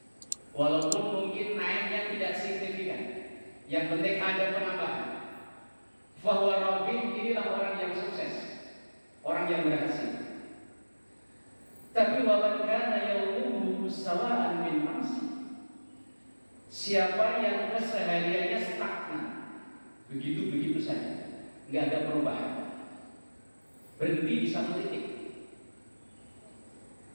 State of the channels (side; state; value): both; inverted; correlation -1.00